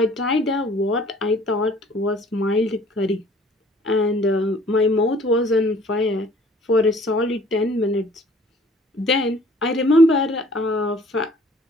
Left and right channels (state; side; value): normal; both; correlation 0.54